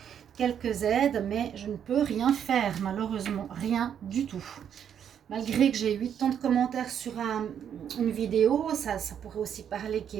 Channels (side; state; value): left; quieter; 8.7 dB